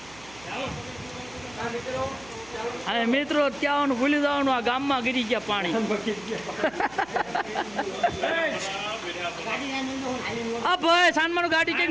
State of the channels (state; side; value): noise; right; hum, 22 dB below the sound